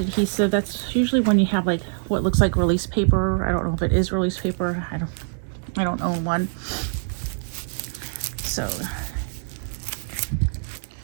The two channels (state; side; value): silent; left; digital silence